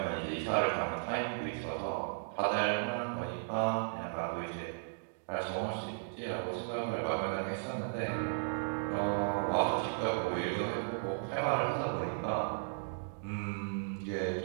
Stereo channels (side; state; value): left; silent; digital silence